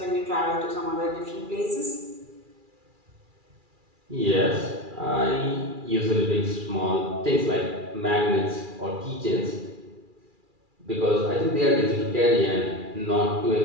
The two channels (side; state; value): left; late; 2.4 ms